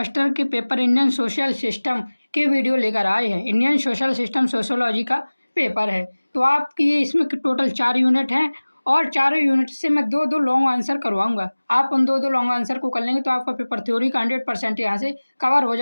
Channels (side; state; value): both; inverted; correlation -1.00